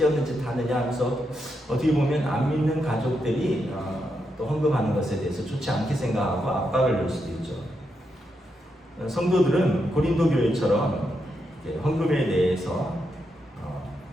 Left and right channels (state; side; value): normal; both; correlation 0.83